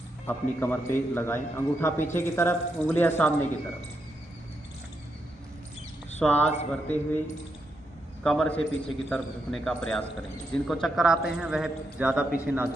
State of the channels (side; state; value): both; normal; correlation 0.82